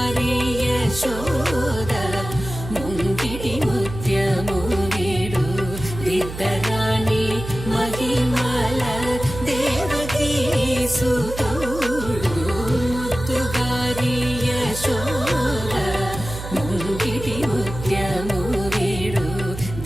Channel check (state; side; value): noise; right; hum, 9 dB below the sound